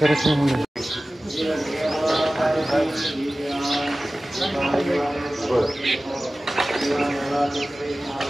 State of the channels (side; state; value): both; normal; correlation 0.97